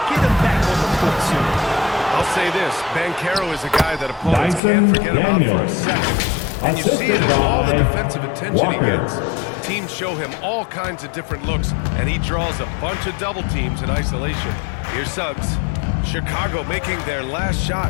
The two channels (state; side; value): drops out; right; at 4.6 s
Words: get him back on the court soon. I'll say this. Banchero is a guy that opponents Dyson can't forget about for a Daniels. second. And you see it Assisted in all the by defensive attention he Walker. gets. Teams show him all kinds of different looks, and he draws a bunch of double teams in isolation. Here's Suggs. Chicago making their last